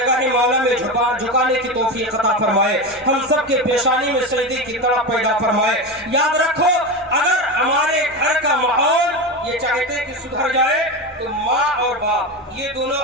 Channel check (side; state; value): both; normal; correlation 0.20